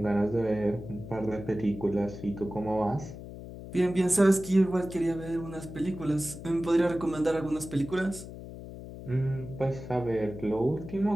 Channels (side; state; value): left; noise; hum, 12 dB below the sound